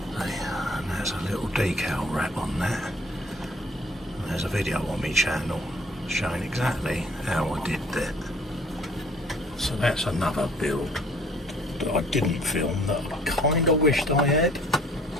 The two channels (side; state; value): both; normal; correlation 0.56